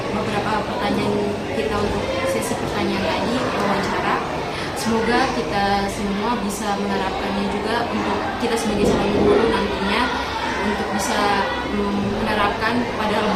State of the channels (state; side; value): identical; both; correlation 1.00